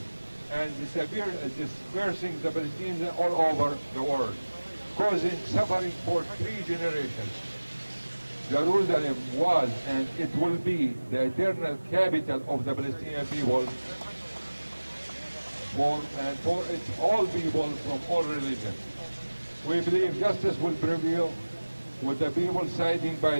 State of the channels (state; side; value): inverted; both; correlation -1.00